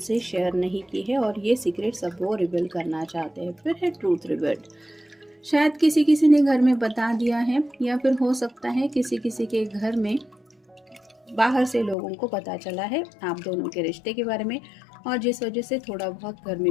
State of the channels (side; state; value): right; drops out; at 12.0 s